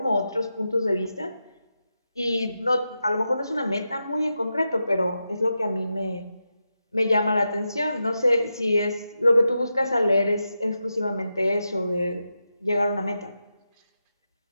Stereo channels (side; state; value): both; inverted; correlation -0.88